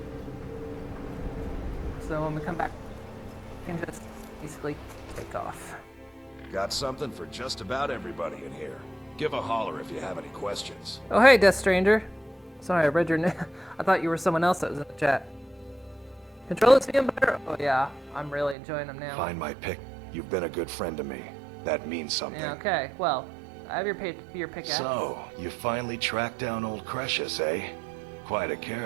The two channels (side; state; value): left; drops out; at 18.6 s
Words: So when we come back, we can just basically take off. Got something for just about everybody in here. Give a holler if you have any questions. Oh hey, Death Stranger. Sorry, I read your name. I thought you were someone else that was in the chat. Controllers feeling better? Oh yeah, I'm really enjoying them now. Find my pick. You've been a good friend to me. That means something. Yeah, okay. Well, I have your pickaxe. So, you finally tracked down old Crucius, eh? Quite a